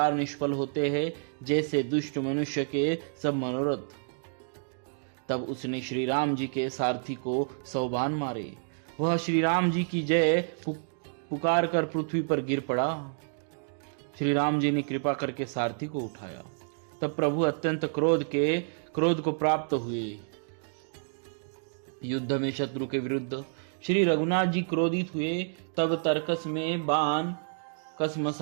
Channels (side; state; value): left; silent; digital silence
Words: निष्फल होते हैं, जैसे दुष्ट मनुष्य के सब मनोरथ। तब उसने श्री राम जी के सारथी को 100 बाण मारे। वह श्री राम जी की जय पुकार कर पृथ्वी पर गिर पड़ा। श्री राम जी ने कृपा करके सारथी को उठाया। तब प्रभु अत्यंत क्रोध को प्राप्त हुए। युद्ध में शत्रु के विरुद्ध श्री रघुनाथ जी क्रोधित हुए। तब तर्कस में बाण